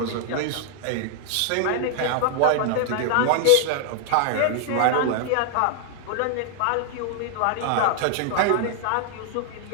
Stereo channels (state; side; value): different; both; correlation 0.00